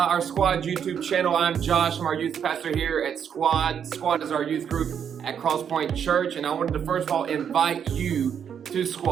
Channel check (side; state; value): left; quieter; 8.0 dB